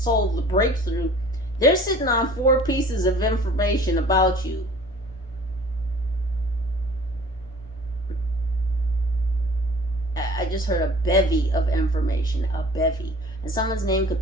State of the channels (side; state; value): both; normal; correlation 0.48